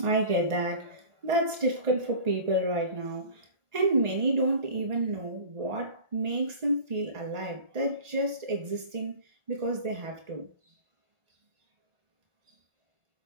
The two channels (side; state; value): left; late; 1.4 ms